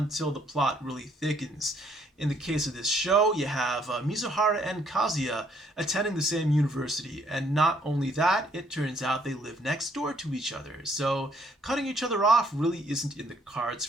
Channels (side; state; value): both; normal; correlation 0.66